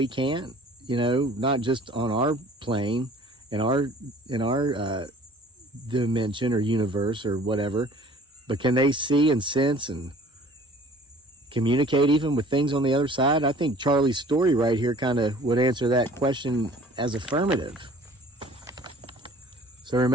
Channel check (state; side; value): normal; both; correlation 0.50